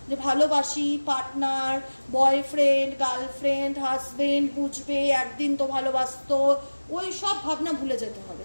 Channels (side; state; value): both; inverted; correlation -1.00